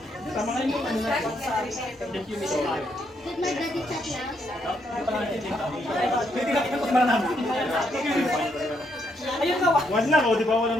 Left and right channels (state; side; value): normal; both; correlation 0.76